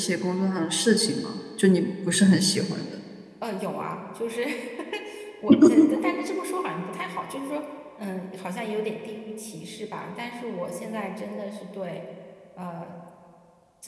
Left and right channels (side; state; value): both; identical; correlation 1.00